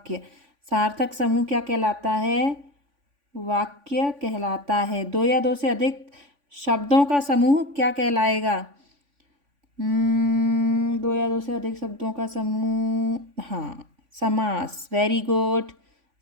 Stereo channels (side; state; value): left; late; 3.5 ms